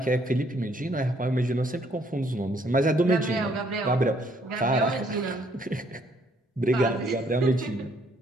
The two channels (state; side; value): normal; both; correlation 0.67